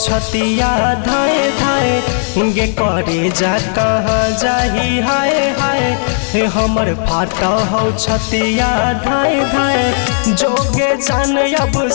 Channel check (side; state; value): right; silent; digital silence